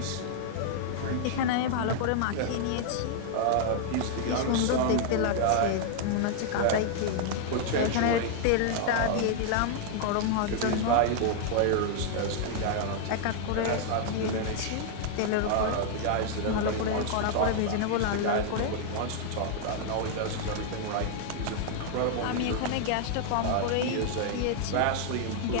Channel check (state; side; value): different; both; correlation 0.00